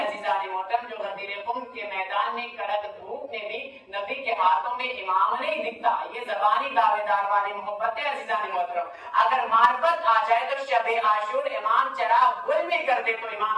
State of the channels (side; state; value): both; identical; correlation 1.00